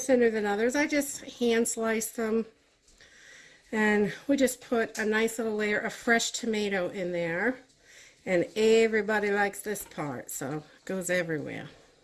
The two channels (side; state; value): both; identical; correlation 1.00